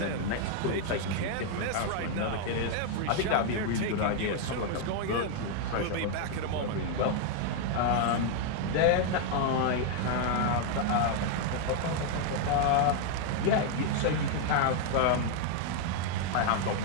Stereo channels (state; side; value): different; both; correlation 0.00